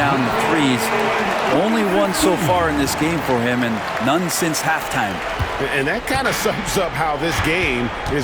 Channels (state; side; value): identical; both; correlation 1.00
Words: the threes. Only one so far in this game for him, and none since halftime. And that kind of sums up how this game